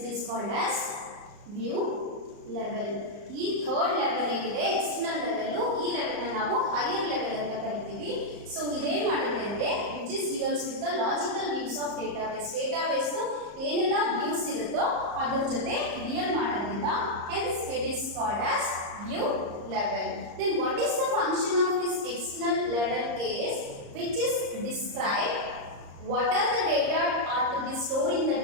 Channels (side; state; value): left; late; 34 ms